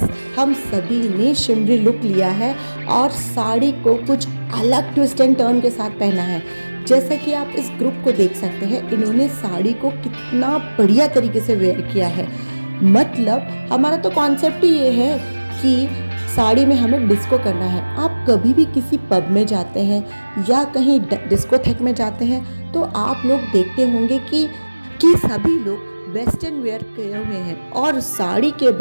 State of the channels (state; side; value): inverted; both; correlation -1.00